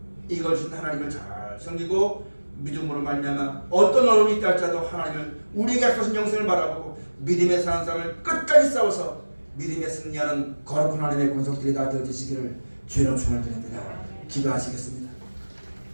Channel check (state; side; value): inverted; both; correlation -1.00